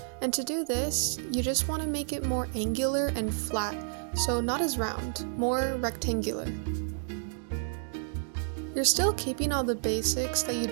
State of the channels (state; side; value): silent; left; digital silence